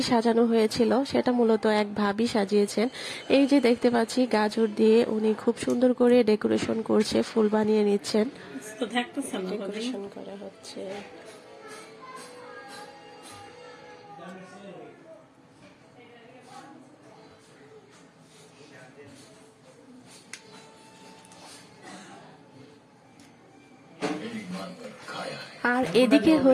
সাজানো হয়েছিল সেটা মূলত এক ভাবি সাজিয়েছেন। এই যে দেখতে পাচ্ছি গাজর দিয়ে উনি খুব সুন্দর করে ডেকোরেশন করছে, ফুল বানিয়ে নিচ্ছেন। ডেকোরেশন করা হচ্ছে। আর এদিকে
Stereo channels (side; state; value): both; identical; correlation 1.00